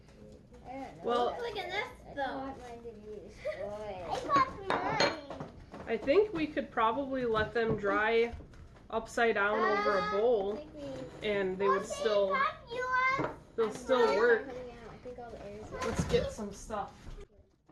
Well, Look at this though. I want mine to be destroyed. I popped mine. I think we could probably let them dry upside down over a bowl, and they would still, they'll still work. Let's get some stuff.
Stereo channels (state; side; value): identical; both; correlation 1.00